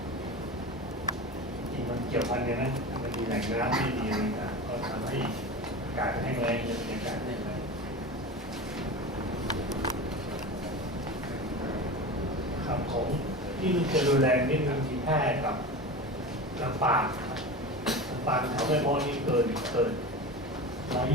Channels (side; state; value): both; normal; correlation 0.29